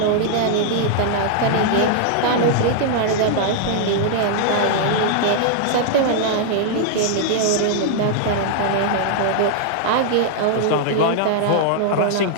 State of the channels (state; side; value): different; both; correlation -0.01